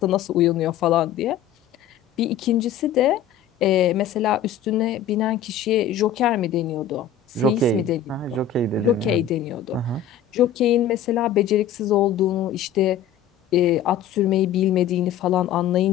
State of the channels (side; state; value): right; quieter; 9.0 dB